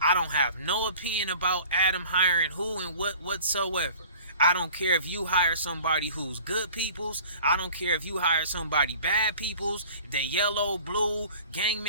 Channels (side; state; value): both; inverted; correlation -0.46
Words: I don't have no opinion about Adam hiring who and what whatsoever. I don't care if you hire somebody who's good peoples. I don't care if you hire somebody bad peoples. If they yellow, blue, gang